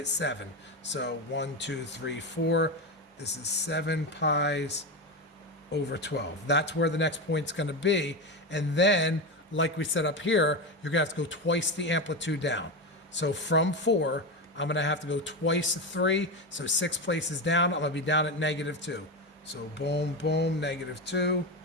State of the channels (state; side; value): normal; both; correlation 0.16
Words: 7. So 1, 2, 3, 4. This is 7 pi's over 12. That's where the next point's going to be. And then, like we said up here, you're going to have to go twice the amplitude down. So from 4, I'm going to have to go twice 3. So 6 places down, I'm going to be down at -2. So boom, boom, -2.